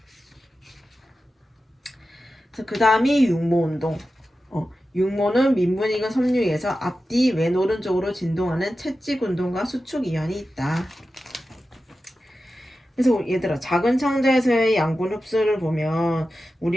그 다음이 육모운동. 육모는 민분이근 섬유에서 앞뒤 왼 오른쪽으로 진동하는 채찍 운동과 수축 이완이 있다. 그래서 얘들아 작은 창자에서의 양분 흡수를 보면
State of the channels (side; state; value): both; normal; correlation 0.93